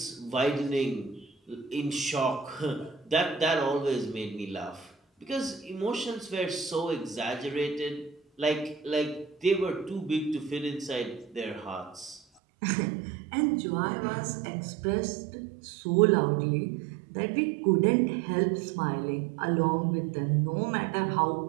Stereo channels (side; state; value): left; drops out; at 12.2 s